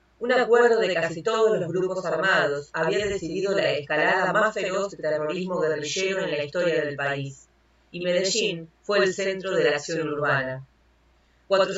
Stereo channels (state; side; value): identical; both; correlation 1.00